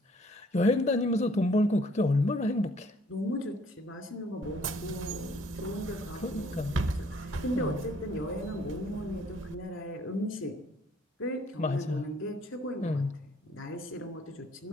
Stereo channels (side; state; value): both; normal; correlation 0.61